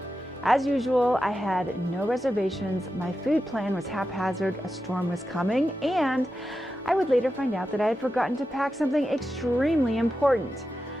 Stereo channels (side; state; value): both; normal; correlation 0.90